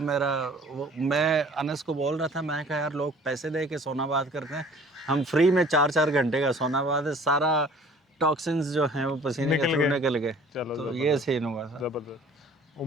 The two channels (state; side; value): normal; both; correlation 0.51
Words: मेरा, मैं अनस को बोल रहा था, मैं कहा यार लोग पैसे दे के सोनाबाद करते हैं, हम फ्री में 4-4 घंटे का सोनाबाद है, सारा टॉक्सिन्स जो हैं वो पसीने के निकल थ्रू गए। निकल गए। चलो तो ये ज़बरदस्त, सीन हुआ था। ज़बरदस्त।